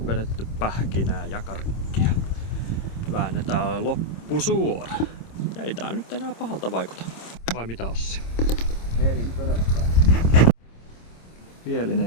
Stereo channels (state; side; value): late; right; 26 ms